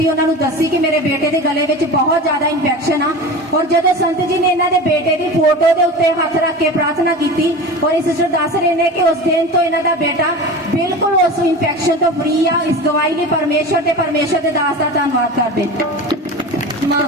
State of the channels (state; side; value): normal; both; correlation 0.32